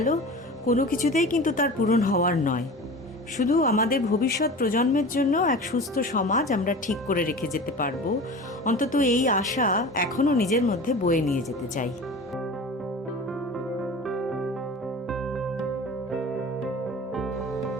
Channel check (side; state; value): both; normal; correlation 0.35